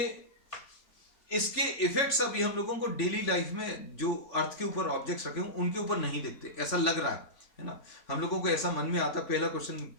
इसके इफेक्ट्स अभी हम लोगों को डेली लाइफ में जो अर्थ के ऊपर ऑब्जेक्ट्स रखे हों उनके ऊपर नहीं दिखते, ऐसा लग रहा है ना. हम लोगों को ऐसा मन में आता, पहला क्वेश्चन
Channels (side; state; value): right; late; 3.6 ms